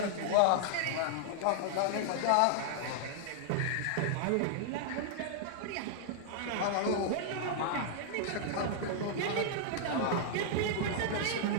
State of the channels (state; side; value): different; both; correlation -0.01